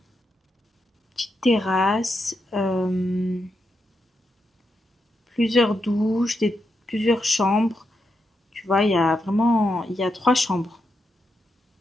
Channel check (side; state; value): both; normal; correlation 0.84